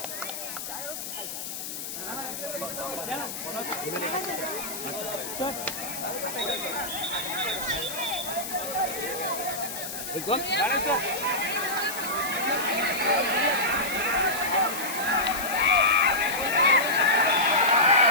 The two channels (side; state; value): left; noise; hiss, 7 dB below the sound